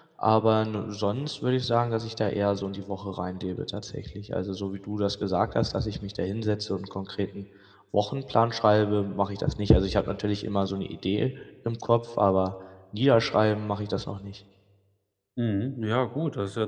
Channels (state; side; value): identical; both; correlation 1.00